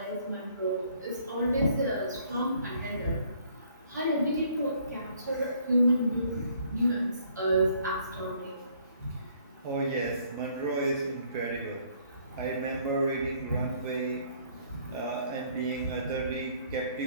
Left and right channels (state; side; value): inverted; both; correlation -0.62